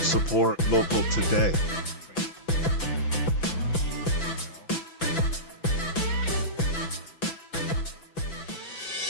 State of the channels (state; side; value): late; right; 6.0 ms